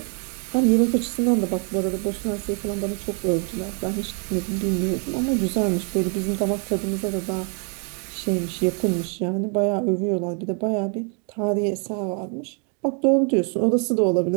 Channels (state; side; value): quieter; left; 40.0 dB